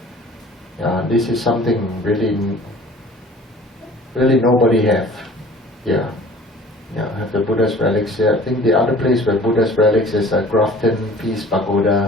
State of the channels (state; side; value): normal; both; correlation 0.48